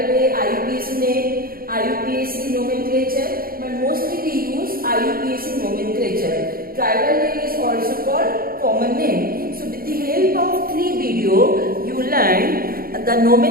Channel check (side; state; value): left; late; 0.43 ms